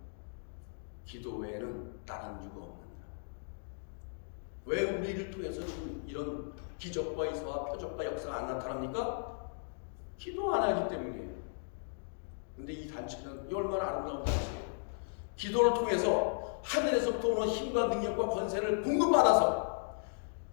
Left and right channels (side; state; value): right; silent; digital silence